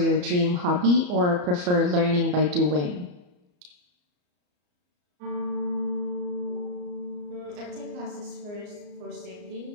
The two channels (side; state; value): left; late; 34 ms